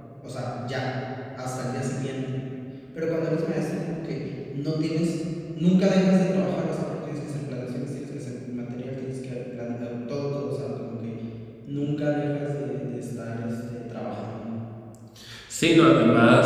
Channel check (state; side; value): identical; both; correlation 1.00